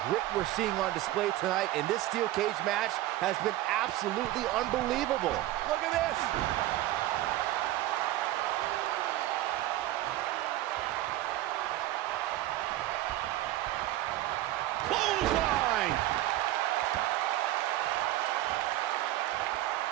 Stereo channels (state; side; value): quieter; left; 15.2 dB